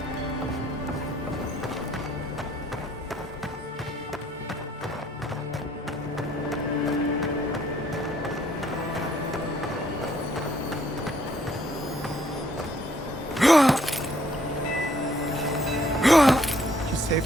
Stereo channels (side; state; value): both; normal; correlation 0.65